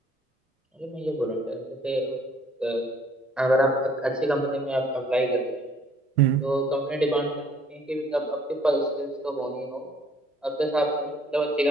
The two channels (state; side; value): normal; both; correlation 0.60